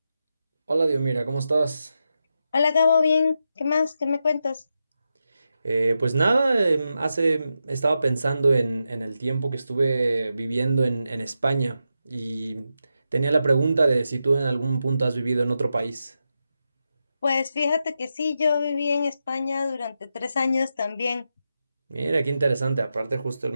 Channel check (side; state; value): both; inverted; correlation -0.87